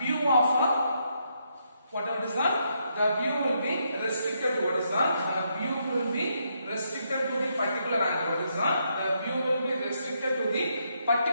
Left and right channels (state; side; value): inverted; both; correlation -0.78